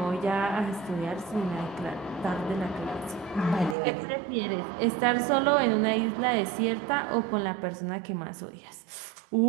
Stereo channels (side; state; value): left; drops out; at 3.8 s